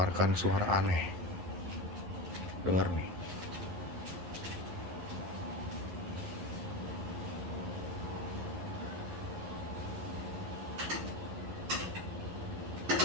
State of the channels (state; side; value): late; left; 11 ms